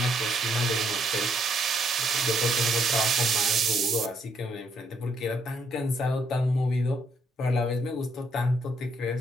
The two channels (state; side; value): normal; both; correlation 0.72